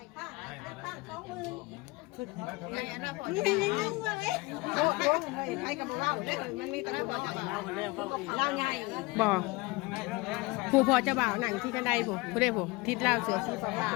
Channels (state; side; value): quieter; right; 23.6 dB